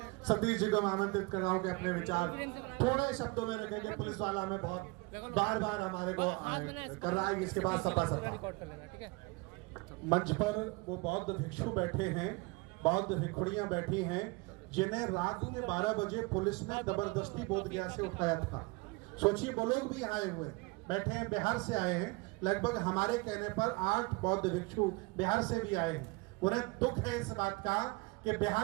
सतीश जी को मैं आमंत्रित कर रहा हूँ कि अपने विचार थोड़े शब्दों में रखेंगे। पुलिस वाला हमें बहुत बार हमारे को कर रहा है, इसके बाद सपा मंच पर वो बौद्ध भिक्षु बैठे हैं, बौद्ध भिक्षुड़ियां बैठी हैं, जिन्हें रात के 12 बजे पुलिस ने जबरदस्ती बोधगया से उठाया था। सोचिए, वो लोग भी आए हुए बैठे हैं, बिहार से आए हैं। लगभग हमारे कहने पर 8 बौद्ध भिक्षु बिहार से भी आए हैं। उन्हें दुख है इस बात का कि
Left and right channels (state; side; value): quieter; left; 26.3 dB